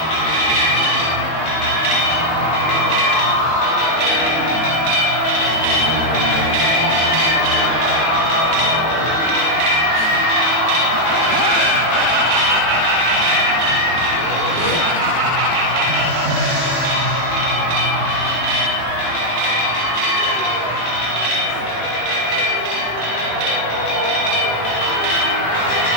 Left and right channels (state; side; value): late; right; 18 ms